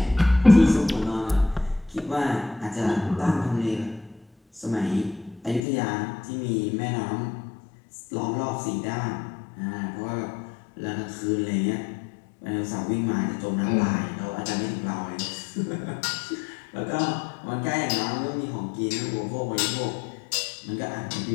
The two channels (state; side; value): drops out; right; at 5.6 s